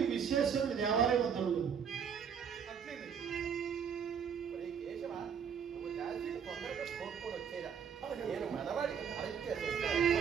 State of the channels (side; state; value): left; quieter; 7.2 dB